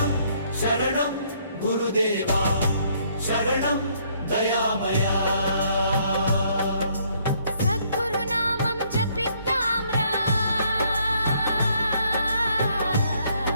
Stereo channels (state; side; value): inverted; both; correlation -0.67